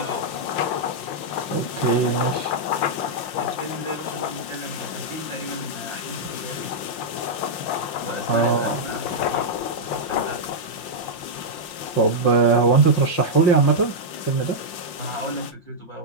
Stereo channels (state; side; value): late; right; 5.7 ms